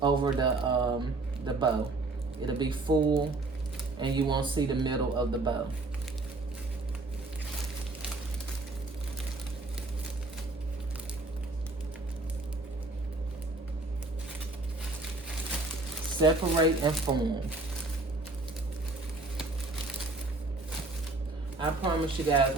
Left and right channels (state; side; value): quieter; left; 3.1 dB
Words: over the bow. It'll be full and you won't see the middle of the bow. Separate and form. I promise you guys,